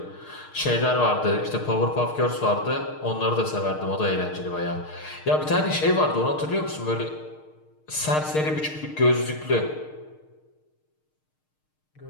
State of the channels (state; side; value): late; right; 6.5 ms